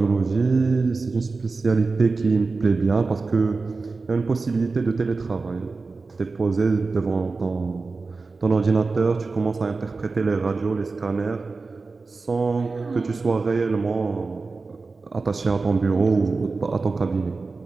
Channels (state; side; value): quieter; left; 4.0 dB